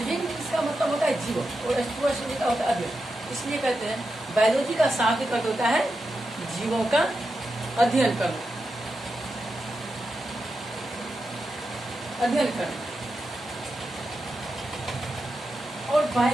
बींग्स का मतलब होता है जीवन और टू स्टडी का होता है अध्ययन। इसलिए कहते हैं बायोलॉजी का शाब्दिक अर्थ होता है जीवों का अध्ययन करना, अध्ययन करना। और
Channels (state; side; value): normal; both; correlation 0.88